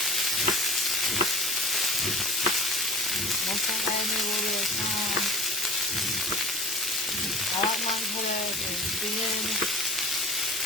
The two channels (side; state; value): both; normal; correlation 0.41